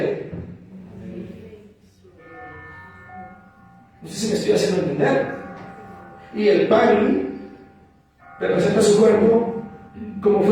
No sé si me estoy haciendo entender. Y el pan representa su cuerpo como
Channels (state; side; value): identical; both; correlation 1.00